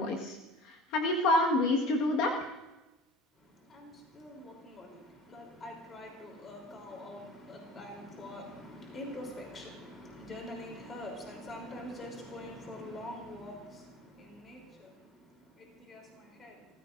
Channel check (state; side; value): normal; both; correlation 0.40